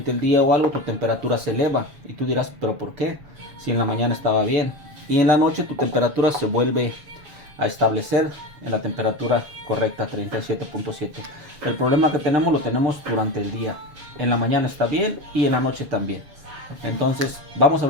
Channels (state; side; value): late; left; 7.1 ms